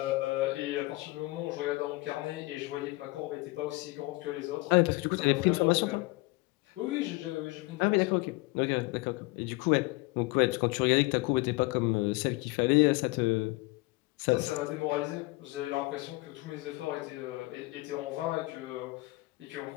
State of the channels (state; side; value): quieter; right; 23.0 dB